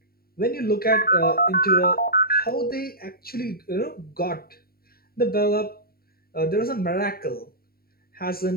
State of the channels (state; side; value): late; right; 0.44 ms